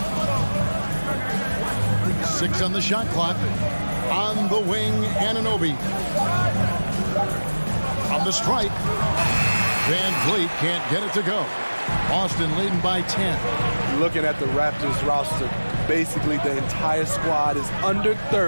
6 on the shot clock. On the wing, Anunoby. On the stripe. Van Vliet can't get it to go. Boston leading by 10. Looking at the Raptors roster, basically the entire squad is under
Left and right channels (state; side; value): inverted; both; correlation -1.00